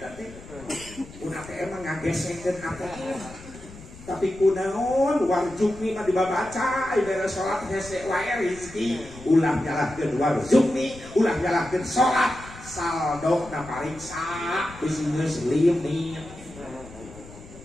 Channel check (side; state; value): left; noise; rumble, 17 dB below the sound